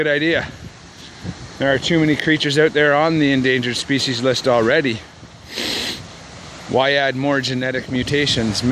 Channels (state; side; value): identical; both; correlation 1.00